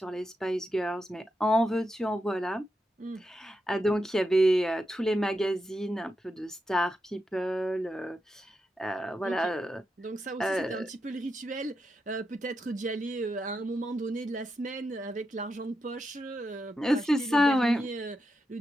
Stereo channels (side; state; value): both; normal; correlation 0.86